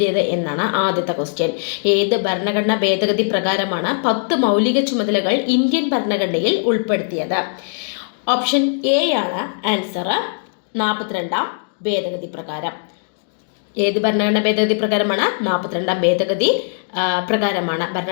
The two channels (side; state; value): right; silent; digital silence